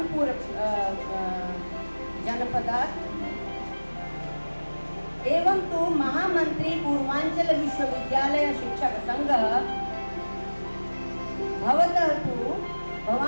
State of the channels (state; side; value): inverted; both; correlation -1.00